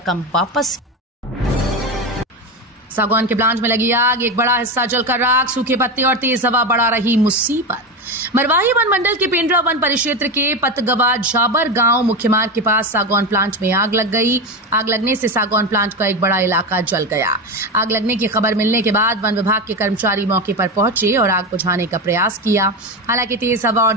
वापस। सागौन के प्लांट में लगी आग, एक बड़ा हिस्सा जलकर राख, सूखे पत्ते और तेज हवा बढ़ा रही मुसीबत। मरवाही वन मंडल के पेंड्रा वन परिक्षेत्र के पतगवा झाबर गांव मुख्य मार्ग के पास सागौन प्लांट में आग लग गई। आग लगने से सागौन प्लांट का एक बड़ा इलाका जल गया। आग लगने की खबर मिलने के बाद वन विभाग के कर्मचारी मौके पर पहुंचे और आग बुझाने का प्रयास किया। हालांकि तेज हवा और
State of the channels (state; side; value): normal; both; correlation 0.17